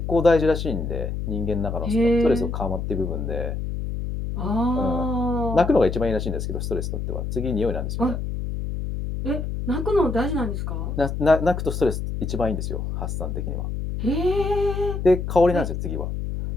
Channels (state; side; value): noise; left; hum, 4 dB below the sound